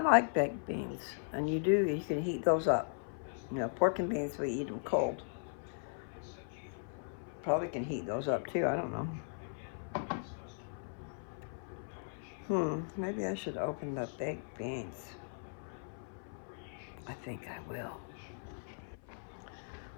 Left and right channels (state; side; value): silent; right; 52 dB below the other